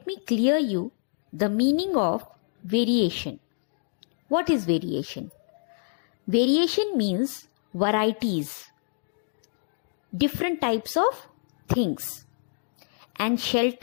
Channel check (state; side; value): silent; right; digital silence